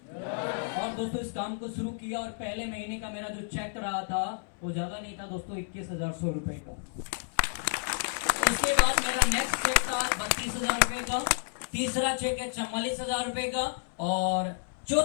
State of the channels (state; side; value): silent; right; 57 dB below the other